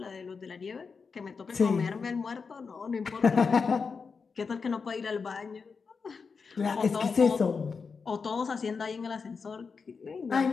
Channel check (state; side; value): quieter; right; 5.2 dB